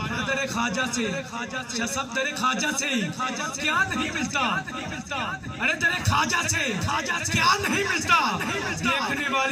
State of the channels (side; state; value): both; identical; correlation 1.00